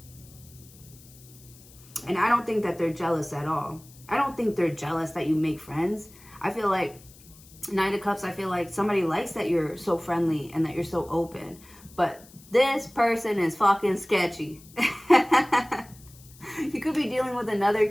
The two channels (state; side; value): noise; left; hiss, 23 dB below the sound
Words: And I don't think that they're jealous at all. I don't think they're jealous that you make friends. I feel like Knight of Cups, I feel like somebody likes that you're so friendly and that you're so open. But this person is fucking sketchy. You could be dealing with another